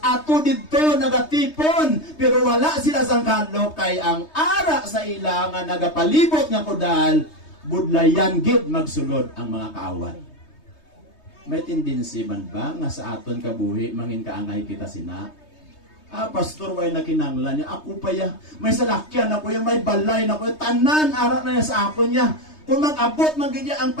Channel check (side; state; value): right; late; 3.2 ms